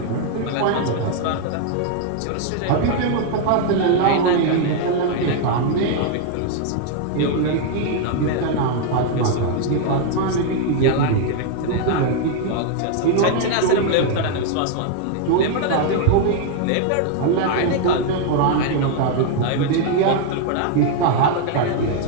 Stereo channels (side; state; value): both; different; correlation 0.00